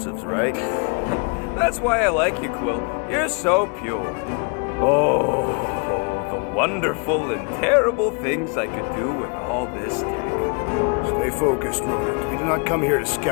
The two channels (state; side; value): quieter; right; 35.7 dB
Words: right? That's why I like you, Quill. You're so pure. Oh, the wonderful and terrible things I could do with all this tech. Stay focused, rodent. We do not come here to